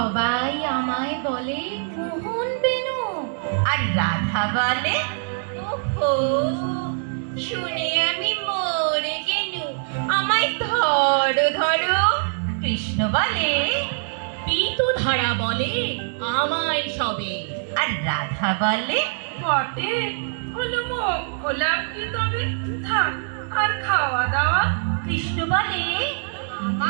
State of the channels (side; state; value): left; silent; 63 dB below the other